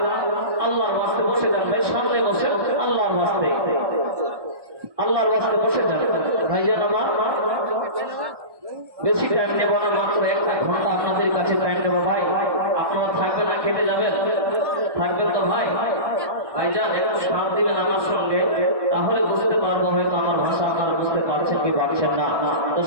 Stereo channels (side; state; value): left; late; 1.2 ms